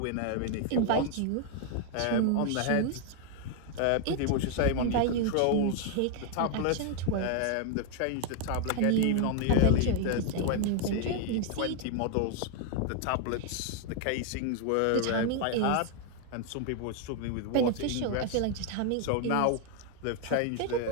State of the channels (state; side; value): different; both; correlation 0.00